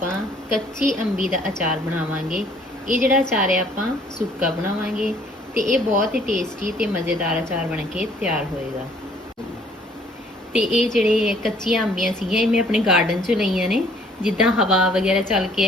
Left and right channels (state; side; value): normal; both; correlation 0.60